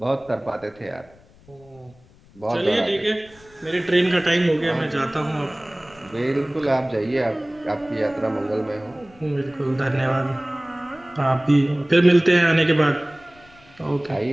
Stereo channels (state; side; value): noise; left; rumble, 27 dB below the sound